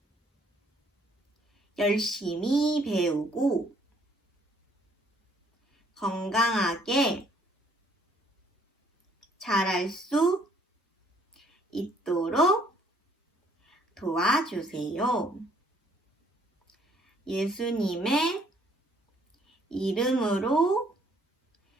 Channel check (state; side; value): normal; both; correlation 0.63